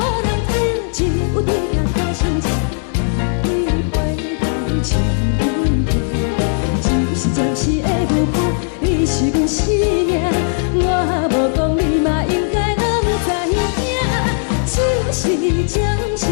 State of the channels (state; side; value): silent; right; digital silence